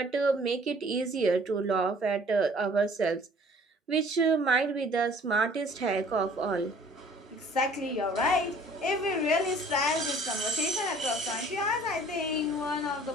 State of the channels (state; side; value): normal; both; correlation 0.53